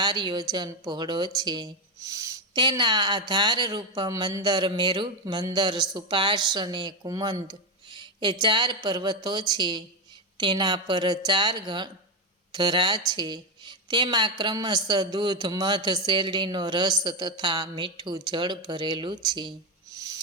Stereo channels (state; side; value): normal; both; correlation 0.09